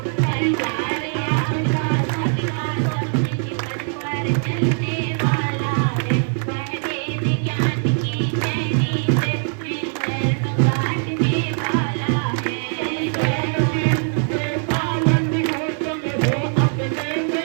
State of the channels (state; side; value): silent; left; 56 dB below the other